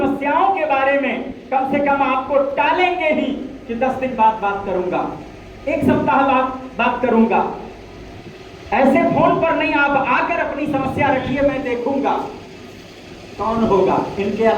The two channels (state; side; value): identical; both; correlation 1.00